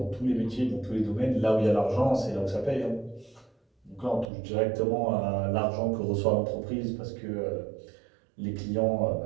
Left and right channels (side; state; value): left; drops out; at 4.2 s